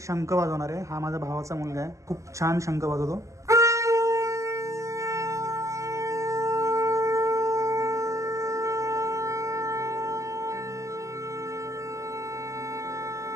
शंख वाजवणार आहे. हा माझ्या भावाचा मुलगा आहे. खूप छान शंख वाजवतो.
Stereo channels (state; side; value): late; left; 0.15 ms